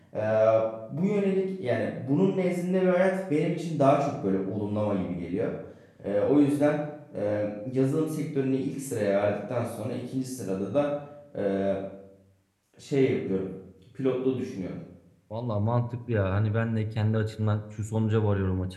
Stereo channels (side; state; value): both; identical; correlation 1.00